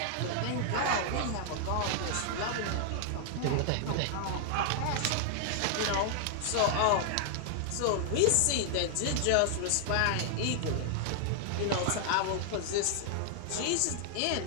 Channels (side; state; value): both; different; correlation -0.01